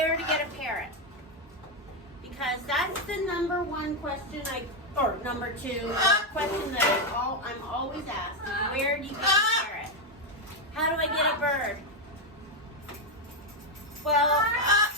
to get a parrot, because that's the number one question or number two question that I'm always asked: where do you get a parrot? How do I get a bird? Well,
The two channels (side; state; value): both; normal; correlation 0.05